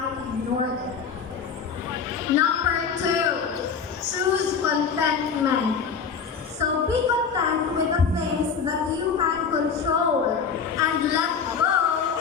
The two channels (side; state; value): right; quieter; 6.2 dB